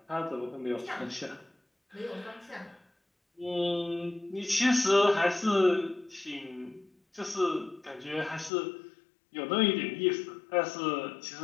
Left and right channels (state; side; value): drops out; right; at 8.5 s